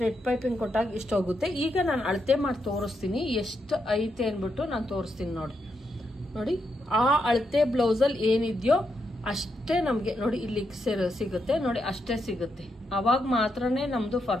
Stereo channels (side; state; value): both; normal; correlation 0.82